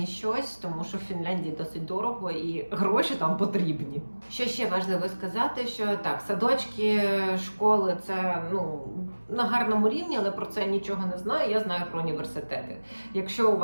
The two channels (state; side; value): inverted; both; correlation -1.00